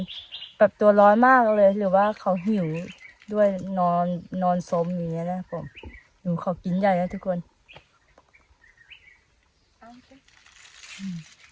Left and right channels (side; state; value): both; identical; correlation 1.00